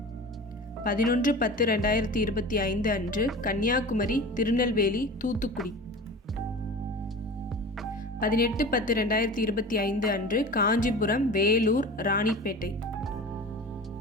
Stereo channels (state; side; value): normal; both; correlation 0.35